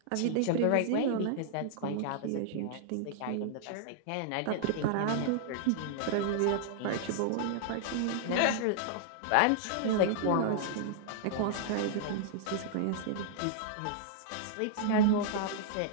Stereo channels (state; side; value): different; both; correlation -0.01